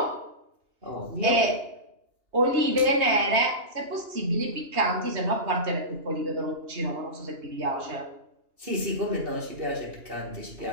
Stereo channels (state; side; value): late; left; 2.8 ms